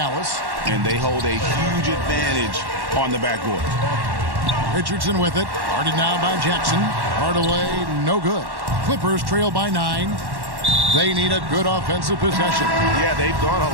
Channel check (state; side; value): late; left; 1.1 ms